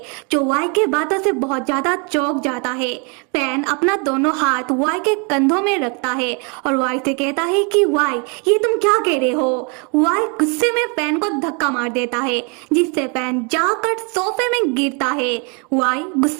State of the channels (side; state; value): left; quieter; 34.5 dB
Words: जो वाई के बातों से बहुत ज्यादा चौंक जाता है। फैन अपना दोनों हाथ वाई के कंधों में रखता है और वाई से कहता है कि वाई ये तुम क्या कह रहे हो? वाई गुस्से में फैन को धक्का मार देता है जिससे फैन जाकर सोफे में गिरता है। वाई